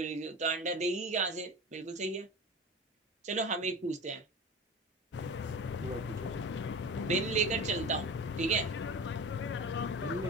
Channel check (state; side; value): normal; both; correlation 0.32